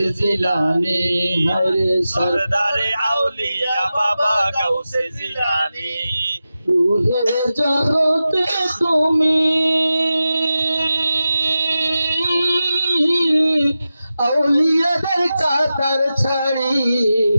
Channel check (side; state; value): both; inverted; correlation -0.93